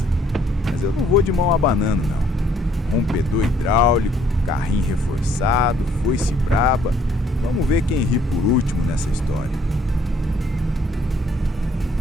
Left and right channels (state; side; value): normal; both; correlation 0.64